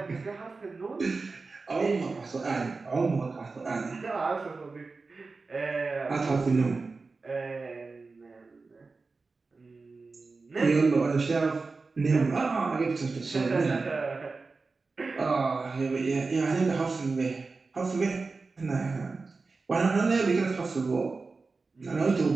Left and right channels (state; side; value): quieter; left; 4.0 dB